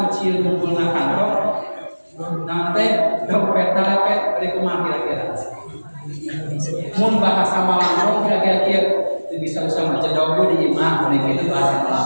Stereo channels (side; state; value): both; inverted; correlation -1.00